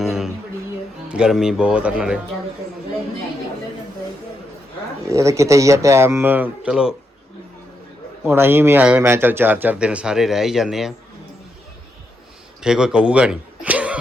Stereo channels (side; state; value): both; normal; correlation 0.82